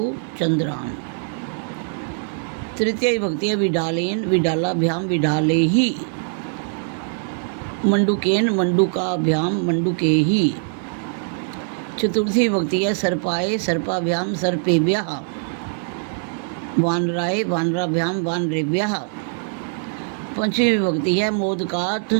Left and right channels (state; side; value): silent; left; 57 dB below the other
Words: चंद्रान। तृतीय विभक्ति है विडालेन विडालाभ्याम विडालेहि। मंडुकेन मंडुकाभ्याम मंडुकेहि। चतुर्थी विभक्ति है सर्पाय सर्पाभ्याम सर्पेभ्यः। वानराय वानराभ्याम वानरेभ्यः। पंचमी विभक्ति है मोदकात्